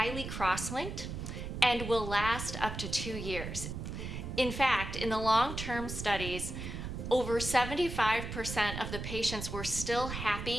cross-linked and will last up to 2 years. In fact, in the long-term studies, over 75% of the patients were still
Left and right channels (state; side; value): noise; right; rumble, 6 dB below the sound